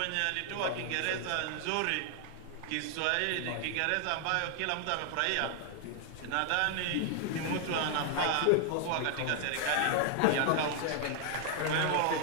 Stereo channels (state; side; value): different; both; correlation 0.00